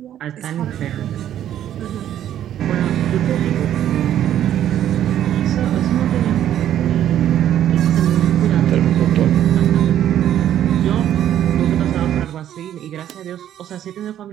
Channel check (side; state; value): left; quieter; 11.1 dB